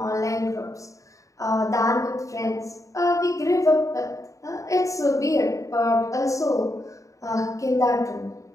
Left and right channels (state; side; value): late; right; 0.16 ms